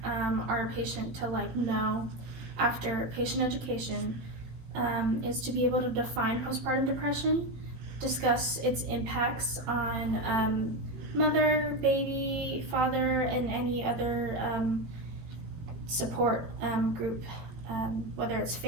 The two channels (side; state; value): left; late; 18 ms